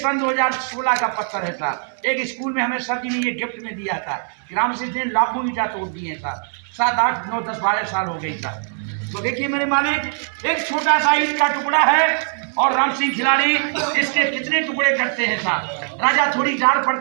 2016 का पत्थर है साहब। एक स्कूल में हमें सर जी ने ये गिफ्ट में दिया था। राम सिंह ने लाखों ईंटा तोड़ दिए साहब। 7, 8, 9, 10, 12 साल हो गई साहब। तो देखिए मेरे मालिक, एक छोटा सा ईंट का टुकड़ा है और राम सिंह खिलाड़ी इसके कितने टुकड़े करते हैं साहब। राजा थोड़ी डाल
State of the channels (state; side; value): silent; left; 63 dB below the other